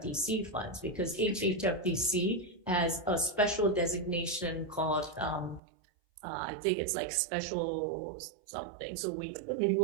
funds, because HHFDC has a special designation called, I think it's like special something. So we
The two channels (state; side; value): drops out; left; at 5.6 s